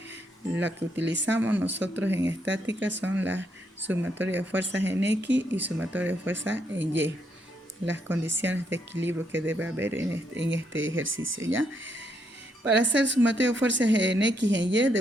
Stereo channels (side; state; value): both; normal; correlation 0.76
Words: La que utilizamos nosotros en estática son las sumatorias de fuerzas en X y sumatorias de fuerzas en Y. Las condiciones de equilibrio que debe haber en este ejercicio, ¿ya? Para hacer sumatorio de fuerzas en X y en Y,